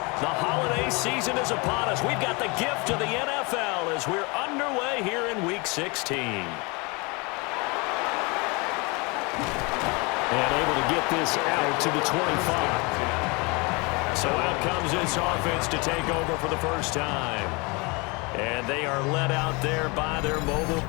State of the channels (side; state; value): right; quieter; 28.2 dB